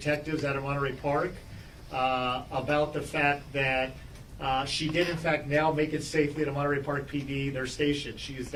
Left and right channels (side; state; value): both; identical; correlation 1.00